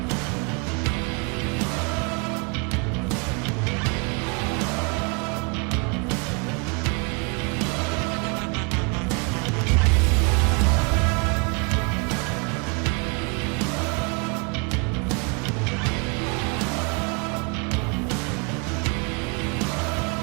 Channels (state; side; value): quieter; left; 33.1 dB